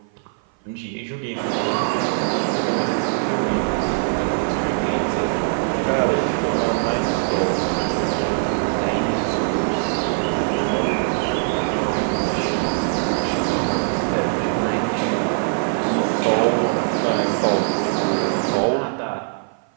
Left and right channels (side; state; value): left; silent; 55 dB below the other